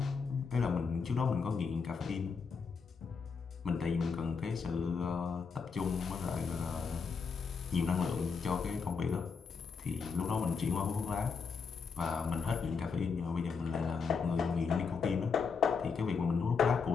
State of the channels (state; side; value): quieter; right; 5.4 dB